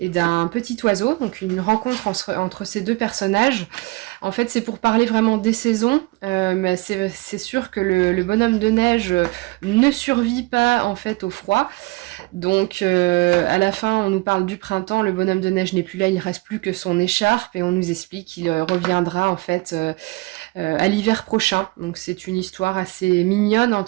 d'un petit oiseau, donc une rencontre entre ces deux personnages. En fait c'est pour parler vraiment des saisons, mais c'est sûr que le bonhomme de neige ne survit pas en fait au froid. Donc à la fin on nous parle du printemps, le bonhomme de neige n'est plus là, il reste plus que son écharpe, et on nous explique qu'il reviendra en fait à l'hiver prochain. Donc c'est une histoire assez mignonne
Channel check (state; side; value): quieter; left; 23.4 dB